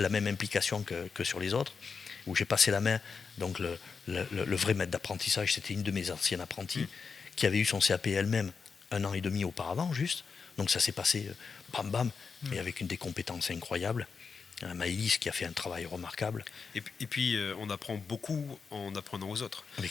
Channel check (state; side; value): quieter; right; 5.4 dB